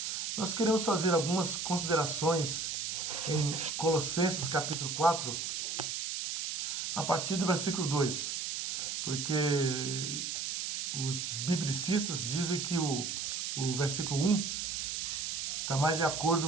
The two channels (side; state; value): right; noise; hiss, 2 dB below the sound